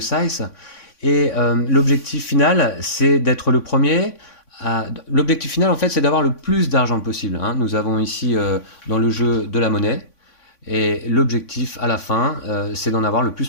Et l'objectif final, c'est d'être le premier. L'objectif final, en fait, c'est d'avoir le plus d'argent possible, hein. Nous avons ici dans le jeu de la monnaie. Et l'objectif à la fin, c'est d'en avoir le plus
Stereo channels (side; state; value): right; late; 3.5 ms